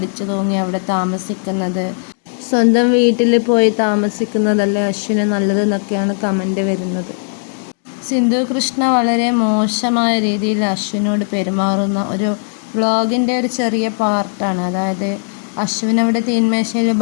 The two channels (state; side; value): silent; right; digital silence